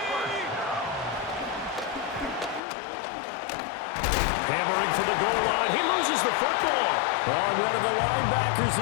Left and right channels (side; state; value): right; drops out; at 2.6 s